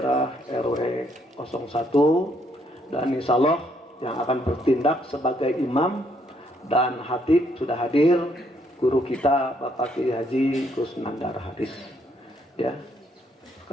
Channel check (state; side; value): normal; both; correlation 0.71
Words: RW 01, dan insya Allah yang akan bertindak sebagai imam dan khatib sudah hadir guru kita Bapak Kiai Haji Kusnandar Haris. Ya,